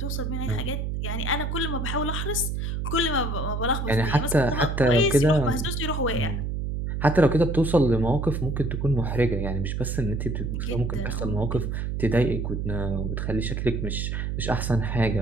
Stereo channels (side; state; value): right; noise; hum, 2 dB below the sound